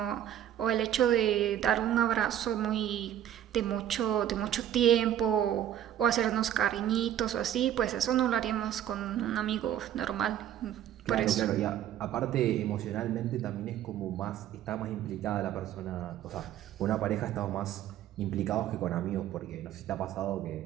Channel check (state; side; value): quieter; left; 11.1 dB